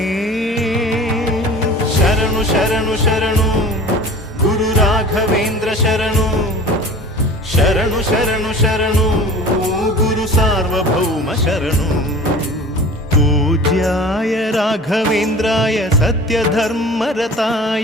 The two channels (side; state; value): both; normal; correlation 0.41